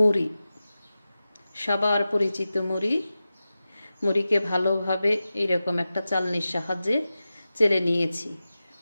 সবার পরিচিত মুড়ি। মুড়িকে ভালোভাবে এইরকম একটা চালনির সাহায্যে চেলে নিয়েছি।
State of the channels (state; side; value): inverted; both; correlation -0.94